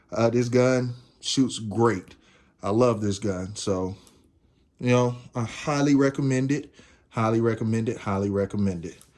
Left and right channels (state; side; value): identical; both; correlation 1.00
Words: This gun shoots great. I love this gun. So, I highly recommend it. Highly recommend it. Highly recommend it.